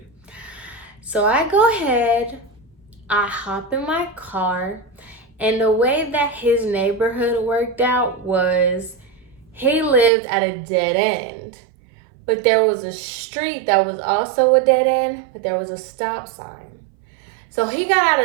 So I go ahead, I hop in my car, and the way that his neighborhood worked out was he lived at a dead end. But there was a street that was also a dead end, but there was a stop sign. So he got out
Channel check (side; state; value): left; drops out; at 10.1 s